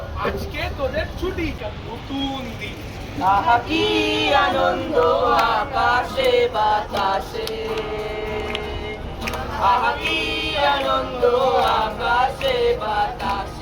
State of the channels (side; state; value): both; identical; correlation 1.00